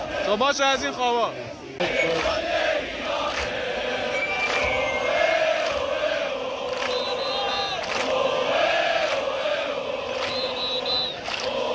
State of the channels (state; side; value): identical; both; correlation 1.00